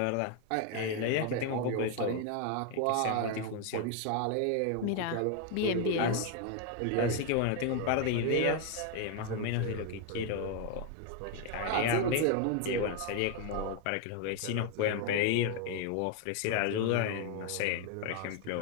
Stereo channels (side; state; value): both; different; correlation 0.01